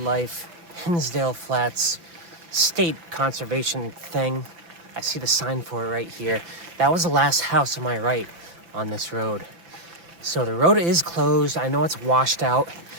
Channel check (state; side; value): late; left; 5.9 ms